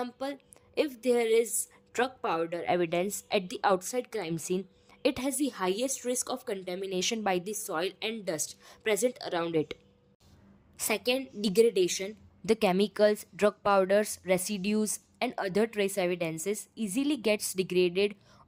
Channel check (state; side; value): identical; both; correlation 1.00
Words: if there is drug powder evidence at the outside crime scene, it has the highest risk of contamination by the soil and dust present around it. Second, degradation. The chemicals, drug powders, residues, and other trace evidences easily gets degraded